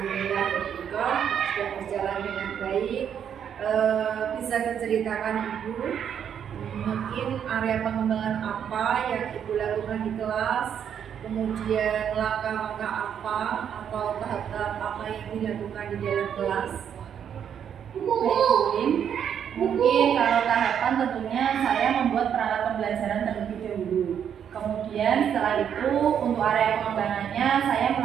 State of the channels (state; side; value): quieter; left; 8.5 dB